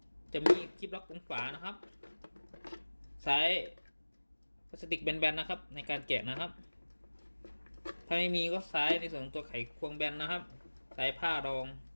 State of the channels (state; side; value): inverted; both; correlation -1.00